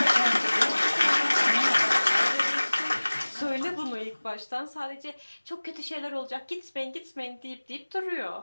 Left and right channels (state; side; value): inverted; both; correlation -1.00